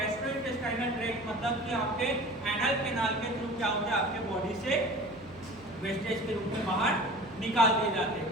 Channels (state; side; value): noise; right; hum, 23 dB below the sound